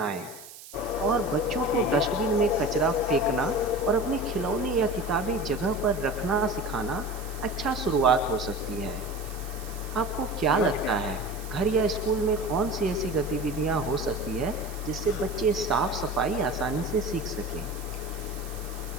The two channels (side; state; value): right; noise; hiss, 16 dB below the sound